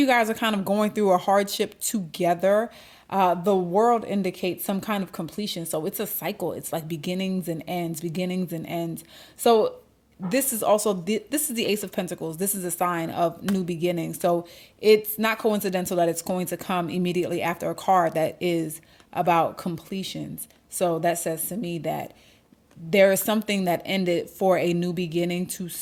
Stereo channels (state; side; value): identical; both; correlation 1.00